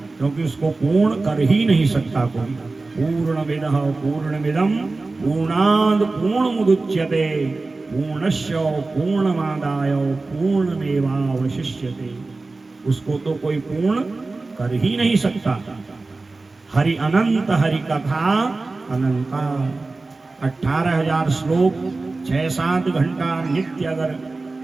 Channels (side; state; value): left; quieter; 3.5 dB